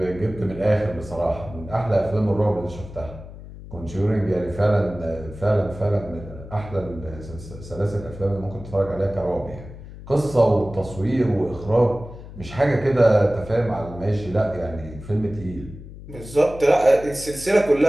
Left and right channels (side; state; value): left; noise; hum, 14 dB below the sound